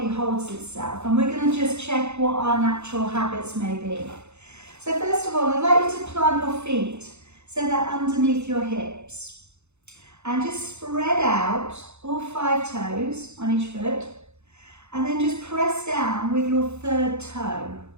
holds itself, and we're going to just check what our natural habits may be. So first of all, I'd like you to plant your feet so they're underneath your hips, and just spread out all 5 toes on each foot, and then just press down with your 3rd toe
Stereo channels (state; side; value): late; left; 0.81 ms